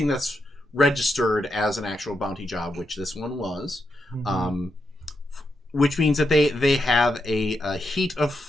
that's registered as an actual bounty job, which this one was, which means that they have a heat of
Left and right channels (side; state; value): both; normal; correlation 0.83